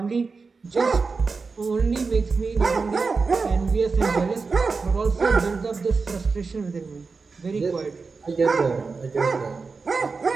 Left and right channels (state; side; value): quieter; left; 4.5 dB